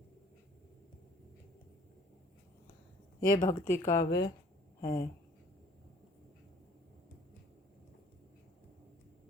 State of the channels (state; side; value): normal; both; correlation 0.54